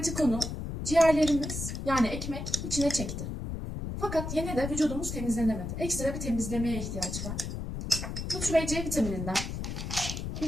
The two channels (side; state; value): left; noise; rumble, 5 dB below the sound